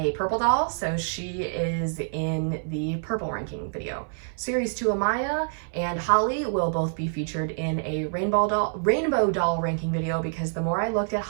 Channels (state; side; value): silent; left; 58 dB below the other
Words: purple doll, so she is in the purple ranking video. Series 2 Amaya and Hali will both be featured in a rainbow doll ranking video, because the more I looked at